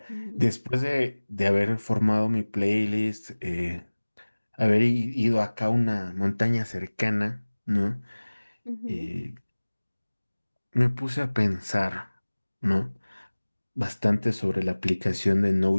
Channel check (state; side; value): inverted; both; correlation -1.00